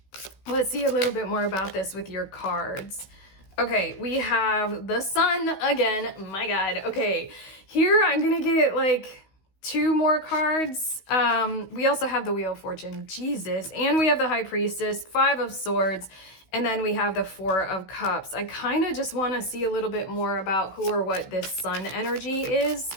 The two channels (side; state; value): right; late; 16 ms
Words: Let's see a little bit more about this with your cards. Okay, we have the Sun again. My God. Okay, here I'm going to get like 2 more cards. We also have the Wheel of Fortune, Jesus, and we have the High Priestess, 5 of Swords, and then we have the 4 of Cups. I kind of just want to see a little bit more about who or what this Sun energy is.